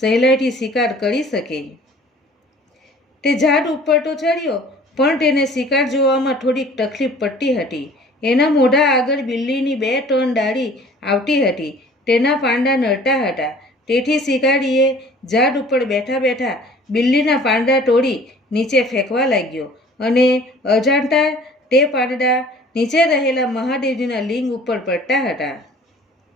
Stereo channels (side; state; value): both; normal; correlation 0.49